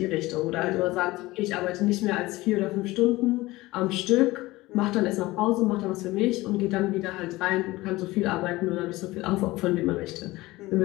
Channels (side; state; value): right; quieter; 19.4 dB